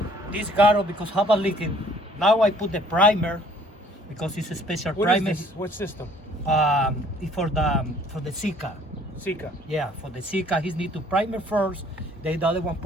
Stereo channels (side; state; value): both; normal; correlation 0.57